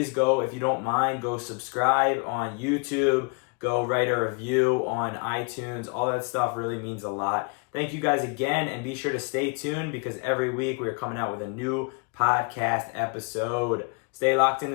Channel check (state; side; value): quieter; right; 35.0 dB